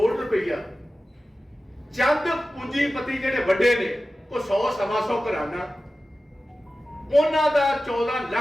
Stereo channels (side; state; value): both; normal; correlation 0.95